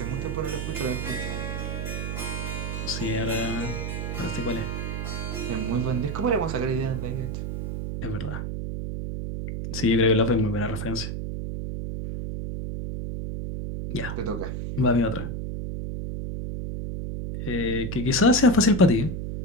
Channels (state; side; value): noise; right; hum, 4 dB below the sound